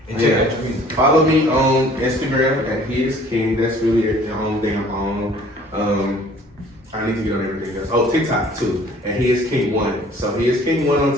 And check out your music. Follow me on Instagram at He Is King. That's really the only thing I'm on. I need to get on everything else. Oh, TikTok too. And He Is King 1. So He Is King 1 on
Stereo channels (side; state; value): both; normal; correlation 0.53